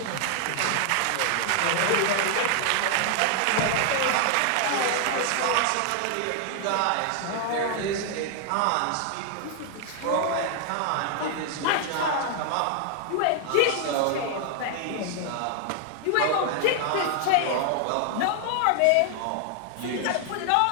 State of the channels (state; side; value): different; both; correlation 0.00